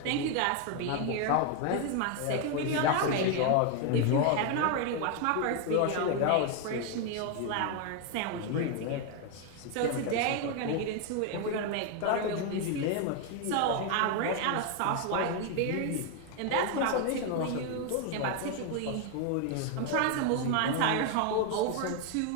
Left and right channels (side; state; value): both; different; correlation 0.01